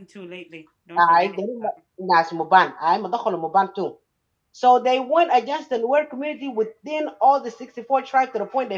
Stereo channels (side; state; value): both; identical; correlation 1.00